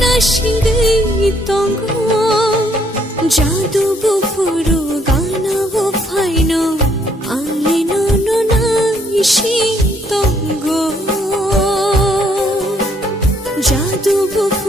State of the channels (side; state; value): both; normal; correlation 0.68